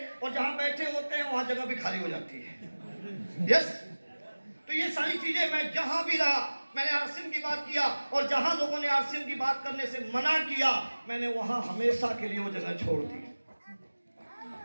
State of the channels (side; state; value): both; inverted; correlation -1.00